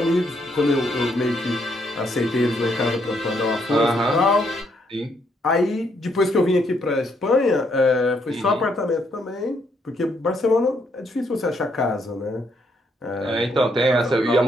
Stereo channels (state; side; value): normal; both; correlation 0.73